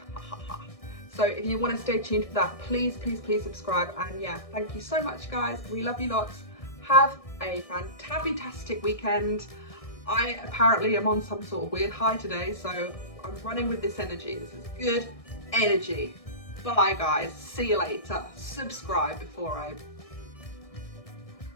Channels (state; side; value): late; right; 1.6 ms